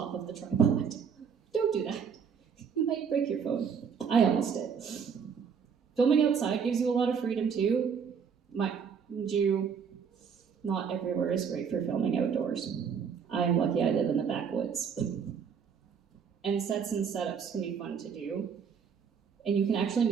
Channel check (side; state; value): left; quieter; 6.7 dB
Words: of the tripod. Don't do that. You might break your phone. I almost did. Filming outside gives you a lot of freedom too. Mind you, not everywhere is great for filming outdoors. I am lucky I live in the backwoods. And sets and setups can be fun to do. And you can actually